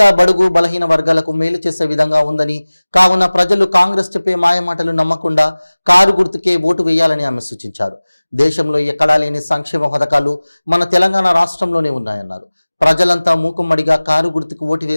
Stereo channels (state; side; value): inverted; both; correlation -1.00